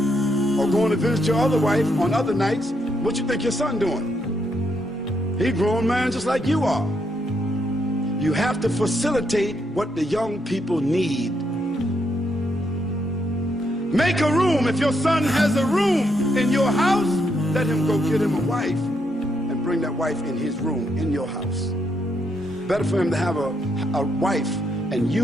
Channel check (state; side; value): normal; both; correlation 0.78